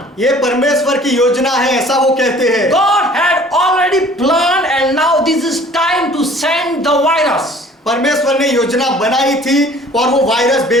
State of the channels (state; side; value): normal; both; correlation 0.51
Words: ये परमेश्वर की योजना है, ऐसा वो कहते हैं। God had already planned and now this is time to send the virus. परमेश्वर ने योजना बनाई थी और वो वायरस